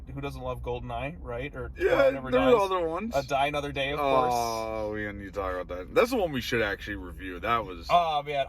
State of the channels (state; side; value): identical; both; correlation 1.00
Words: who doesn't love GoldenEye, right? Or Never Dies. Other ones. Die Another Day, of course. Oh, we need to talk about that. That's the one we should actually review. That was... Oh, man.